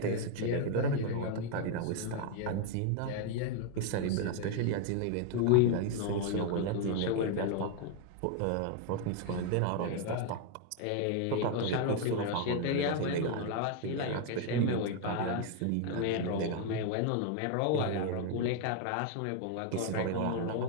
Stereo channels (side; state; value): both; different; correlation 0.00